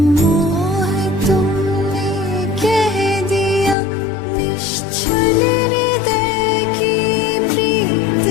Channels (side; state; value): right; drops out; at 3.8 s